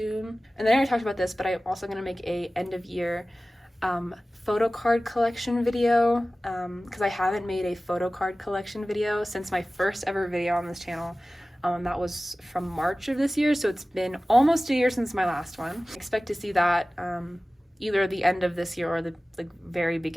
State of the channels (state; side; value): normal; both; correlation 0.97